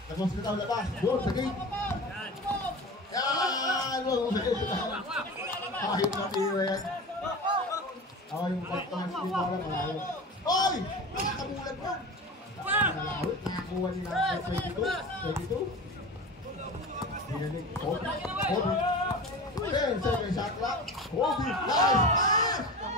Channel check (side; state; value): both; normal; correlation 0.31